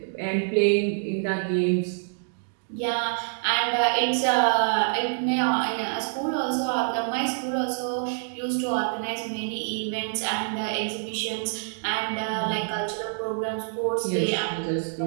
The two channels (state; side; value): silent; left; digital silence